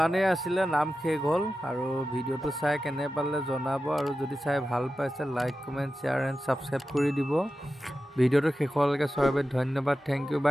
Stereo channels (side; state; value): both; normal; correlation 0.93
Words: আছিলে নাম শেষ হ'ল আৰু ভিডিঅ'টো চাই কেনে পালে জনাব আৰু যদি চাই ভাল পাইছে like comment share and subscribe কৰি দিব ভিডিঅ'টো শেষলৈকে চোৱাৰ বাবে ধন্যবাদ থেংক ইউ